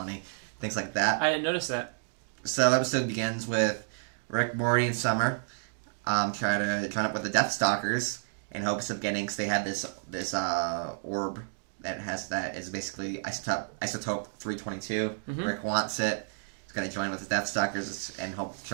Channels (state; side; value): silent; left; digital silence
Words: Things like that. I didn't notice that. So the episode begins with Rick, Morty, and Summer try to join up with the Death Stalkers in hopes of getting. Cause they have this orb that is basically isotope 322. Mm-hmm. Rick wants it. He's gonna join with the Death Stalkers and hope